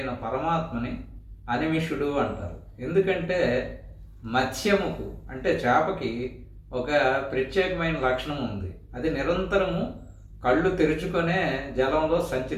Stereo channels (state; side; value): identical; both; correlation 1.00